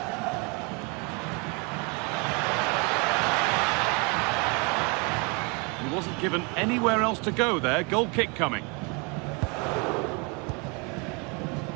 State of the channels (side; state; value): left; quieter; 31.3 dB